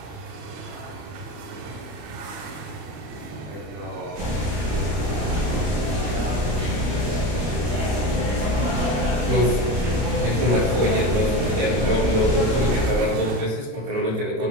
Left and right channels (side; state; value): left; late; 33 ms